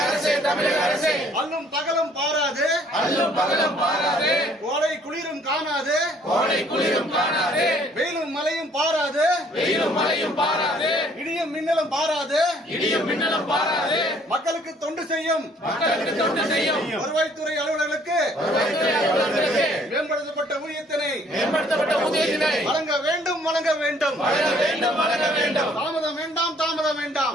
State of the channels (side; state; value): both; normal; correlation 0.61